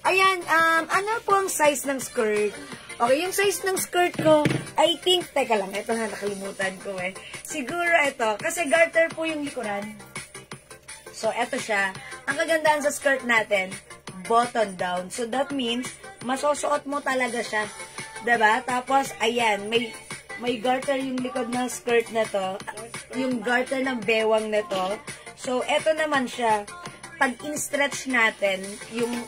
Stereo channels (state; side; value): identical; both; correlation 1.00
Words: Ayan, ano po ang size ng skirt? Okay, yung size ng skirt ko, I think, teka lang, ito na, nakalimutan ko Siguro ito, kasi garter po yung likuran. So, ito siya. Ang kagandahan sa skirt natin, button down. So, that means, masusuot mo talaga siya. Diba? Tapos, ayan, may garter yung likod ng skirt na to. Yung garter ng bewang na to. So, ito naman siya. Pag in-stretch natin, yung